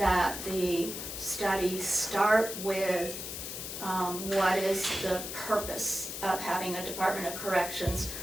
the studies start with what is the purpose of having a Department of Corrections,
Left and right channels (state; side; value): noise; left; hiss, 7 dB below the sound